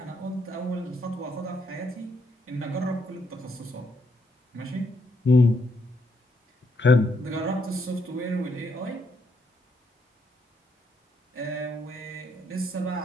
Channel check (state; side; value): normal; both; correlation 0.75